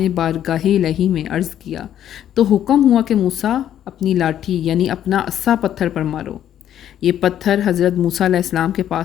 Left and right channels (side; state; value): right; quieter; 10.8 dB